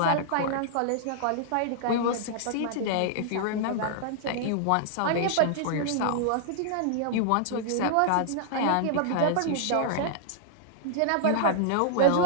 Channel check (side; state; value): both; different; correlation -0.01